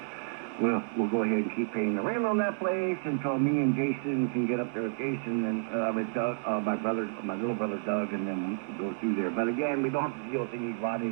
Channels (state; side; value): silent; left; digital silence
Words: we'll go ahead and keep paying the rent on that place until me and Jason can get up there with Jason and with Doug, my little brother Doug, and then go through there. But again, we don't have to deal with any